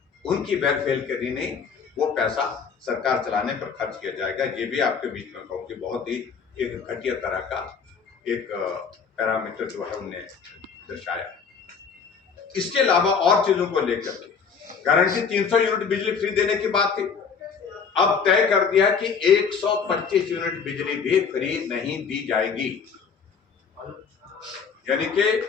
उनकी वेलफेयर के लिए नहीं, वो पैसा सरकार चलाने पर खर्च किया जाएगा। ये भी आपके बीच में कहूँ कि बहुत ही एक घटिया तरह का एक पैरामीटर जो है उन्हें दर्शाया। इसके अलावा और चीजों को लेकर गारंटी 300 यूनिट बिजली फ्री देने की बात थी, अब तय कर दिया कि 125 यूनिट बिजली भी फ्री नहीं दी जाएगी। यानी कि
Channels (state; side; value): quieter; right; 6.0 dB